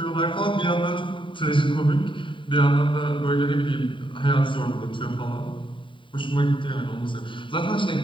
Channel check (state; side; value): late; right; 0.24 ms